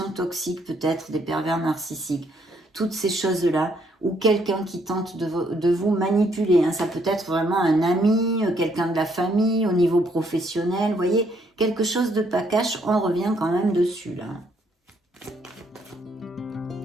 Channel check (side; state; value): both; normal; correlation 0.70